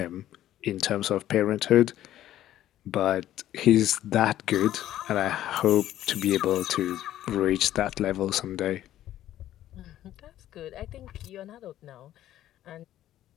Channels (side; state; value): right; quieter; 12.8 dB